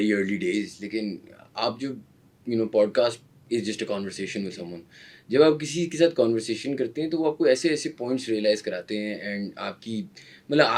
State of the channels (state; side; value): identical; both; correlation 1.00